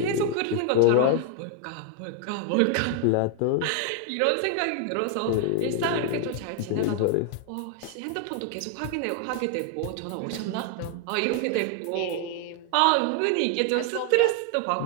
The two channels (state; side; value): different; both; correlation 0.00